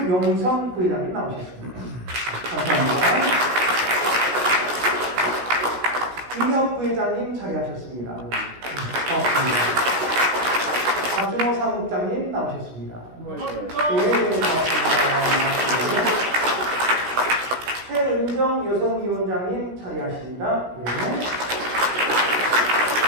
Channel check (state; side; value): late; left; 16 ms